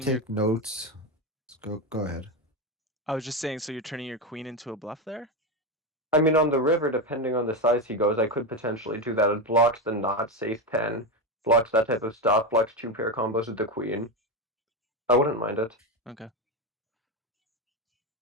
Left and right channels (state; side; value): normal; both; correlation 0.13